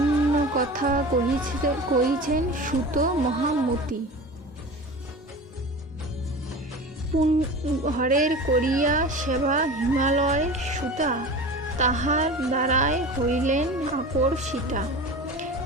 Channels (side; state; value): both; normal; correlation 0.33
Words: কথা কহিছেন সুত মহামতি। হরের করিয়া সেবা হিমালয় সুতা, তাহার দ্বারায় হইলেন আকর্ষিতা।